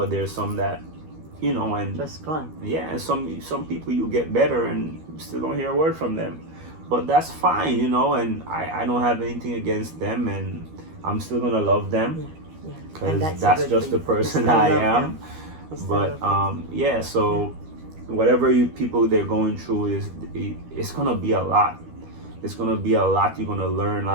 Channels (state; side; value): late; left; 13 ms